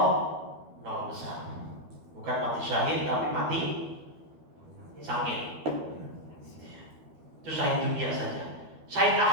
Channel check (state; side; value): late; left; 12 ms